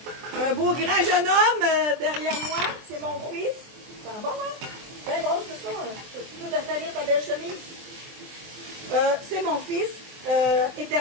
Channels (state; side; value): late; left; 23 ms